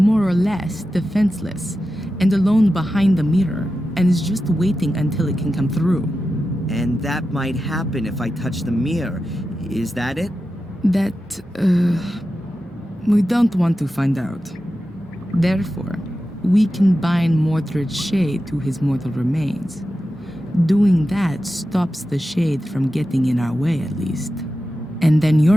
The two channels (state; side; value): normal; both; correlation 0.92